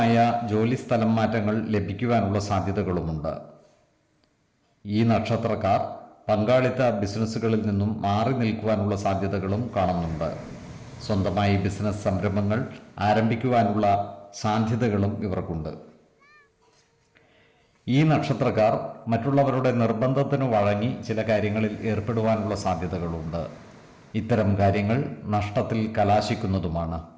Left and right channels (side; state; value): both; identical; correlation 1.00